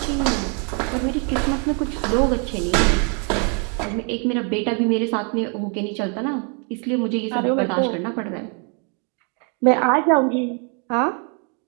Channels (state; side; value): quieter; left; 38.0 dB